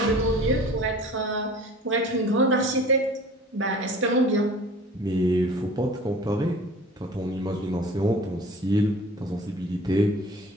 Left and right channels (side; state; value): both; normal; correlation 0.44